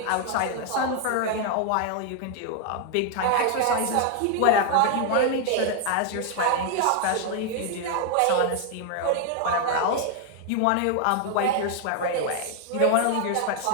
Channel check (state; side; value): different; both; correlation 0.00